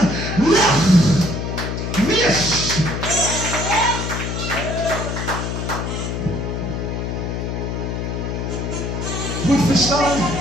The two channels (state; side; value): noise; left; hum, 3 dB below the sound